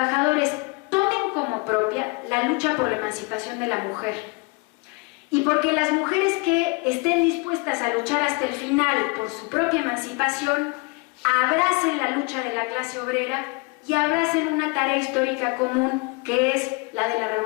tomen como propia la lucha por la emancipación de la mujer. Y porque las mujeres que estén dispuestas a luchar hasta el final por su propia emancipación, abracen la lucha de la clase obrera y abracen una tarea histórica común que es la de la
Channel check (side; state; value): right; quieter; 28.1 dB